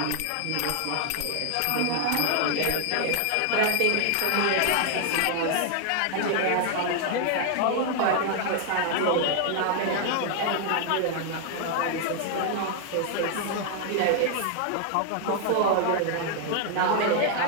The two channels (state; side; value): different; both; correlation 0.00